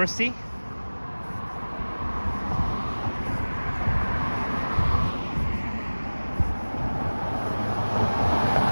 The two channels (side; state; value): both; inverted; correlation -1.00